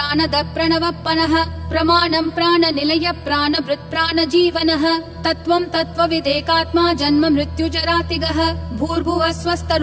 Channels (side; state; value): both; identical; correlation 1.00